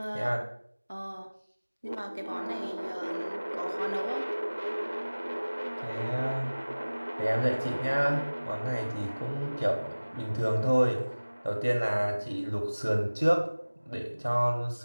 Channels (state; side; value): inverted; both; correlation -1.00